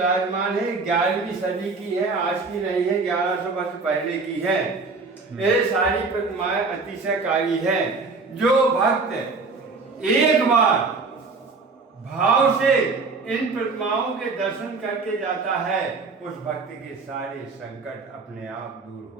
है, 11वीं सदी की है, आज की नहीं है, 1100 वर्ष पहले की है। ये सारी प्रतिमाएं अतिशयकारी हैं। जो भक्त एक बार भाव से इन प्रतिमाओं के दर्शन करके जाता है, उस भक्त के सारे संकट अपने आप दूर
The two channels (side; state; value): left; quieter; 4.2 dB